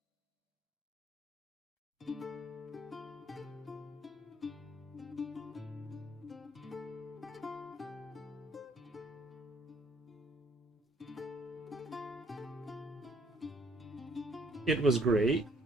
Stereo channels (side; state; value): both; normal; correlation 0.63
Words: It was great.